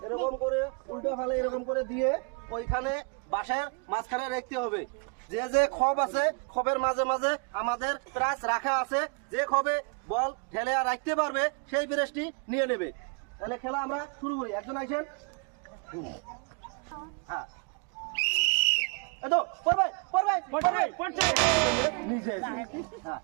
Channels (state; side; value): quieter; left; 35.7 dB